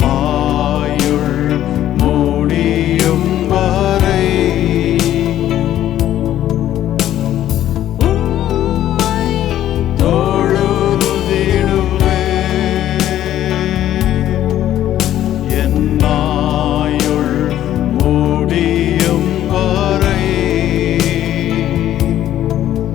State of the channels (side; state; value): right; quieter; 12.3 dB